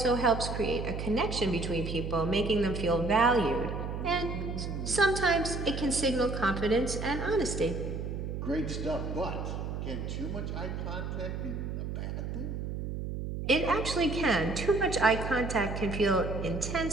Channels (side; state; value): right; noise; hum, 4 dB below the sound